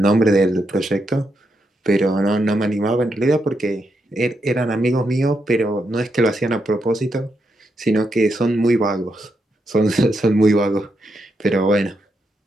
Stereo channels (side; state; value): both; normal; correlation 0.82